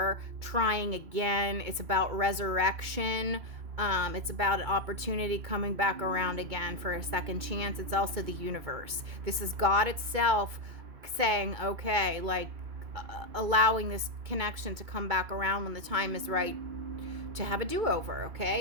trying again. It's about resurrection. It's about an opportunity coming back around again for a second chance. It's also the universe. This is God itself saying, okay, like allowing this connection to come back around when the time is right to have a do-over,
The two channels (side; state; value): left; late; 2.3 ms